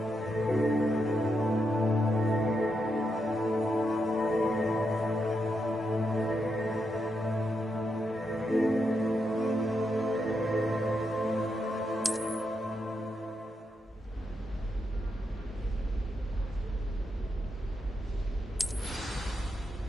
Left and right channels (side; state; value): both; normal; correlation 0.83